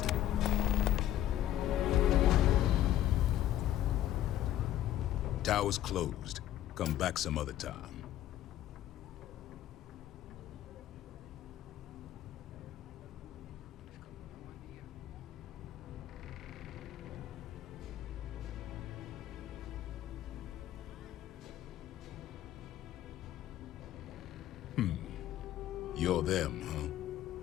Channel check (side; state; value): right; quieter; 12.7 dB